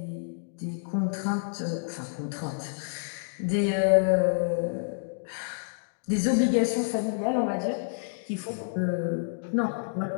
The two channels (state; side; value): silent; right; digital silence